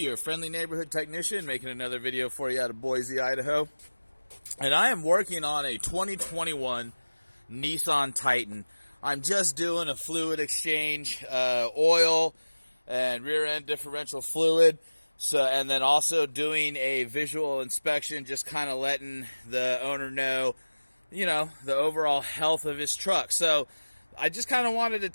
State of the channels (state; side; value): inverted; both; correlation -1.00